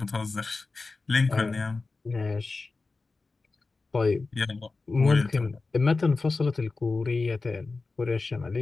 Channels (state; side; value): quieter; right; 3.8 dB